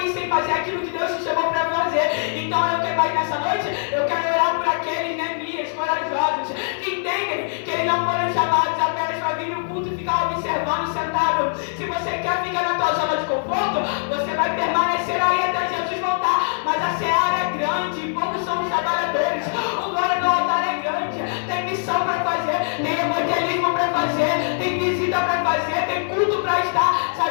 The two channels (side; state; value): right; silent; 64 dB below the other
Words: sem fazer aquilo que Deus te chamou para fazer. Então eu quero mais nessa noite, eu quero orar por aqueles Neemias corajosos que entendem que eles não foram chamados apenas para vir no culto e ficar observando sentado. Se você quer ficar na tua zona de conforto, você vai permanecer aí até Jesus voltar. Mas a seara é grande, poucos são os trabalhadores. O glória do altar é grande. Tem missão para fazer, tem evangelismo para fazer, tem visita para fazer, tem culto para estar.